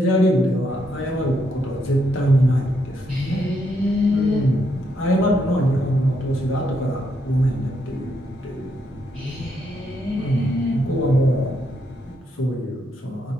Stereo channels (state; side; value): normal; both; correlation 0.77